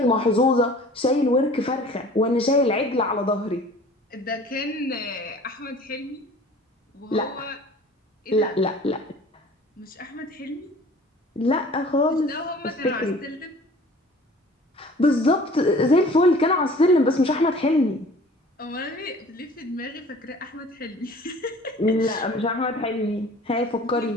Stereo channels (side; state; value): both; normal; correlation 0.47